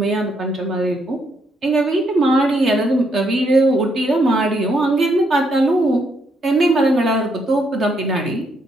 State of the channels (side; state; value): both; normal; correlation 0.75